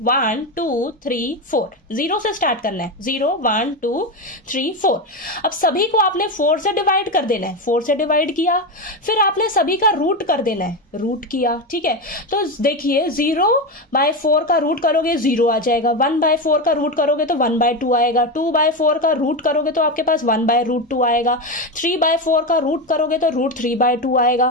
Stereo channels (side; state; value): both; normal; correlation 0.15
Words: 1, 2, 3, 4। 0 से स्टार्ट करना है, 0, 1, 2, 3, 4। अब सभी को आपने 4 से डिवाइड कर देना है, 4 से डिवाइड किया। फिर आपने सभी का रूट कर देना है, रूट किया। ठीक है, तो देखिए 0/4 का रूट करोगे 0 आ जाएगा, 1/4 का रूट करोगे तो 1/2 आएगा, 2/4 का रूट करोगे तो आपके पास 1/√2 आएगा, 3/4 का रूट करोगे तो √3/2